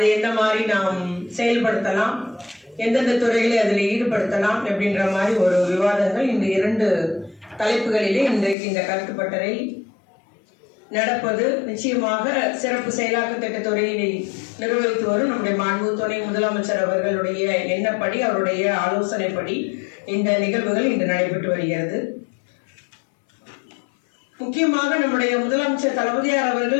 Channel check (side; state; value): right; drops out; at 8.6 s